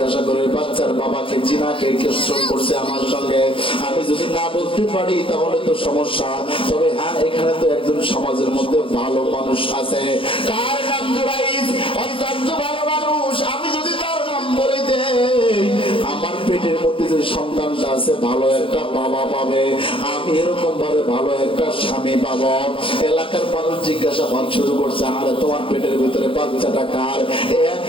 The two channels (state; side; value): late; right; 0.25 ms